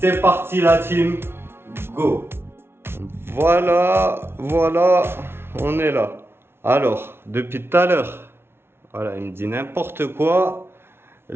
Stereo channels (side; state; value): left; late; 0.12 ms